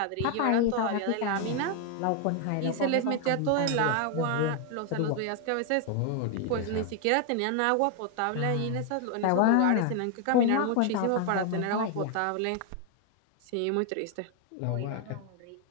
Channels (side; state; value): both; different; correlation 0.00